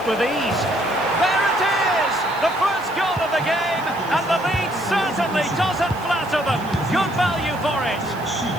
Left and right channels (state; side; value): noise; right; hiss, 22 dB below the sound